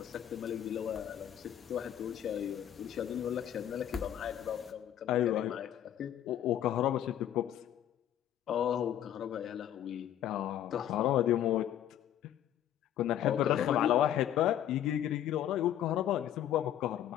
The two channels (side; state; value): right; quieter; 11.0 dB